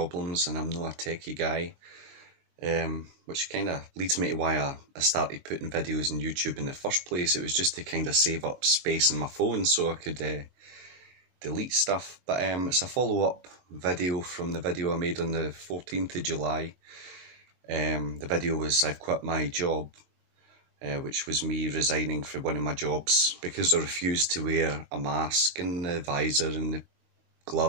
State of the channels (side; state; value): left; late; 22 ms